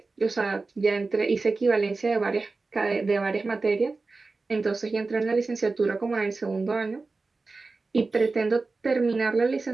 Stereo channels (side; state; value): left; quieter; 3.8 dB